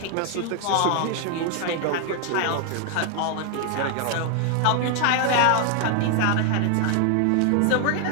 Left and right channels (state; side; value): different; both; correlation 0.00